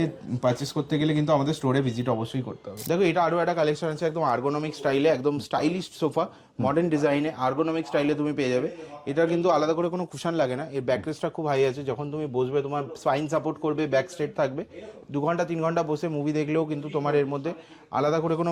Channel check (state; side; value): identical; both; correlation 1.00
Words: পারচেস করতে গেলে কিন্তু আমাদের স্টোরে ভিজিট অবশ্যই করতে হবে। দেখো এটা আরও একটা কালেকশন আছে একদম আর্গোনমিক স্টাইলে, একদম স্টাইলিশ সোফা, মডার্ন ডিজাইনে আর্গোনমিক স্টাইলে তুমি পেয়ে যাবে। এটা কিন্তু আলাদা করে কোনো কুশন লাগে না, এর ব্যাকরেস্টটা খুব হাই আছে, যখন তুমি বসবে তোমার স্পাইন সাপোর্ট করবে, ব্যাক স্ট্রেট থাকবে, 2 ঘন্টা 3 ঘন্টা বসে মুভি দেখলেও কিন্তু তোমার এর মধ্যে আলাদা করে কোনো